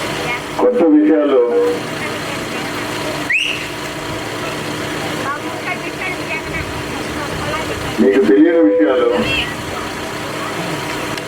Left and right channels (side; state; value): both; identical; correlation 1.00